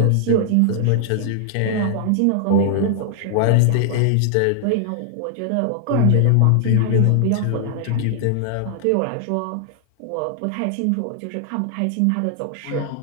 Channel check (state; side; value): different; both; correlation 0.00